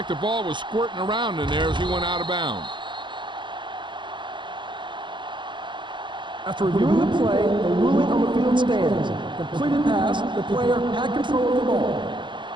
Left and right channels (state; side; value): late; left; 0.23 ms